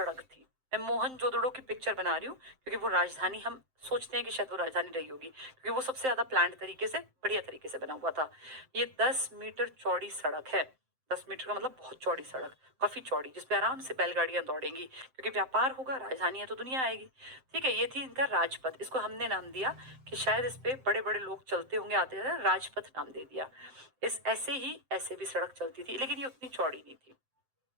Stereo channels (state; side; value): late; left; 7.7 ms